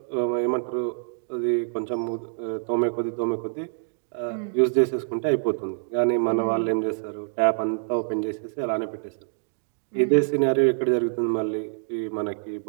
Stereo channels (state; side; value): silent; left; digital silence